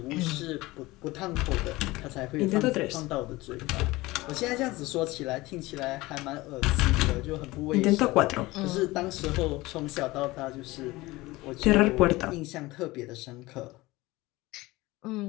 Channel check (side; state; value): right; quieter; 20.2 dB